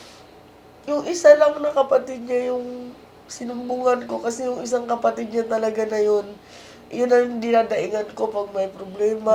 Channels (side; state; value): both; identical; correlation 1.00